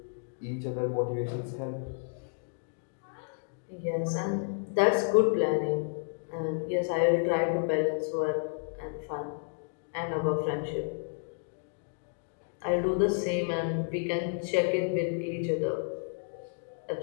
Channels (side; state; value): right; silent; digital silence